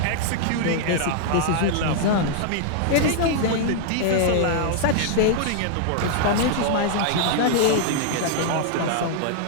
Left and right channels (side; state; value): both; different; correlation -0.01